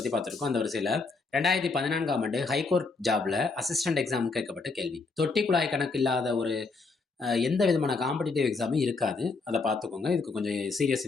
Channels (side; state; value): right; quieter; 4.1 dB